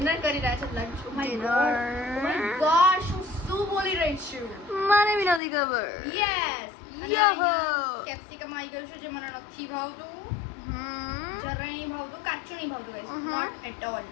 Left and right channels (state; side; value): drops out; right; at 5.4 s